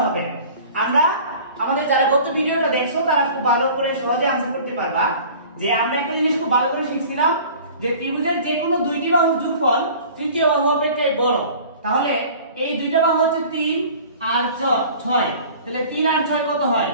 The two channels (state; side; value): inverted; both; correlation -0.45